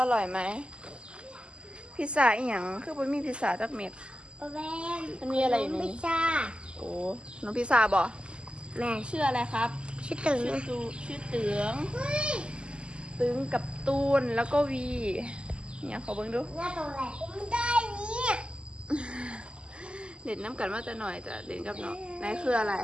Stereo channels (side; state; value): left; late; 0.051 ms